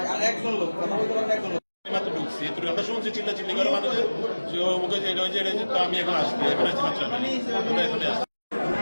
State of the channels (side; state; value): both; inverted; correlation -1.00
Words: একজন লোক কথা বলতে পারেন একজন লোক মাত্র ঢুকছি আমরা শুনছি চিল্লাচিল্লি করে মানুষের মুখে যে তো আমি এখন আসছি এখন আসছি মাত্র এখানে আসছি